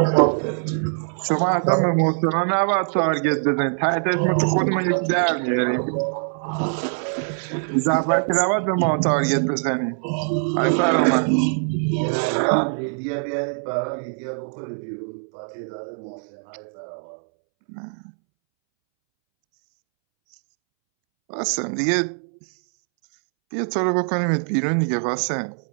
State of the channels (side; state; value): left; silent; 64 dB below the other